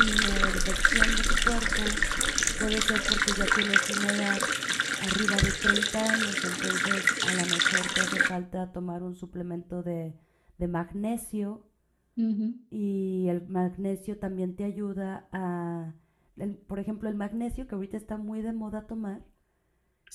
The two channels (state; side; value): identical; both; correlation 1.00